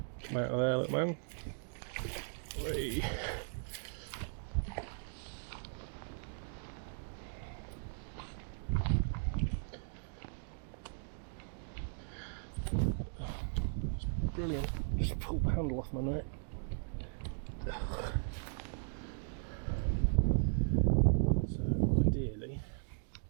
Come out of there, little man. Whee. brilliant. Just pulled the handle off my neck. So ideally,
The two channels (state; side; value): silent; left; digital silence